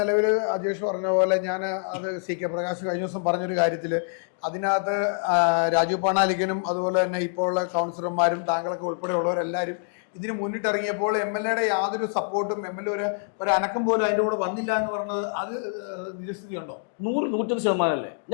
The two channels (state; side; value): silent; right; digital silence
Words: അജേഷ് പറഞ്ഞ പോലെ ഞാൻ അത് CK പ്രകാശ് കഴിഞ്ഞ ദിവസം പറഞ്ഞൊരു കാര്യത്തില് അതിനകത്ത് രാജീവ് പണാലിക്കനും അതുപോലെ തന്നെ ഇപ്പോൾ ഉള്ള കൗൺസിലർമാരും താങ്കളൊക്കെ ഉൾപ്പെടെയുള്ളവരെല്ലാവരും ഇതിന് മുന്നിട്ടിറങ്ങിയപ്പോൾ MLA യാതൊരു സപ്പോർട്ടും ഒരു അനക്കം പോലും അതിന്റെ കൂടെ വന്നില്ല എന്ന് പറഞ്ഞത് അത് നിജസ്ഥിതി ഉണ്ടോ? 100%